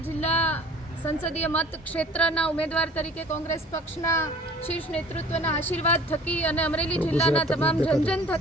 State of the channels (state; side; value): normal; both; correlation 0.48